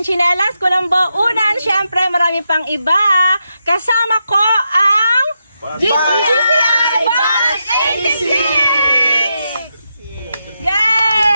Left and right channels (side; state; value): both; inverted; correlation -0.85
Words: tsinelas, kulambo, unan, syempre marami pang iba. Kasama ko ang GCI Bus 86!